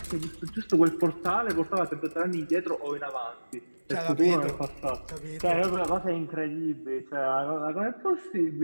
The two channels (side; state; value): both; inverted; correlation -1.00